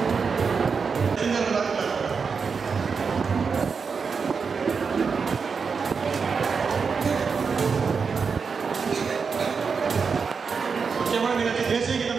முக்கியமான நிகழ்ச்சி தேசிய கீதம்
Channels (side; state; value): left; quieter; 5.5 dB